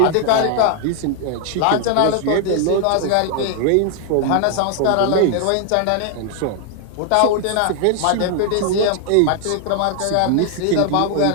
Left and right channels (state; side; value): different; both; correlation 0.00